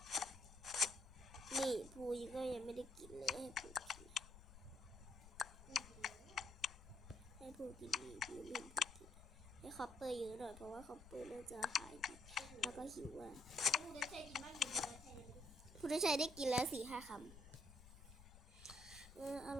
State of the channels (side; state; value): left; noise; rumble, 17 dB below the sound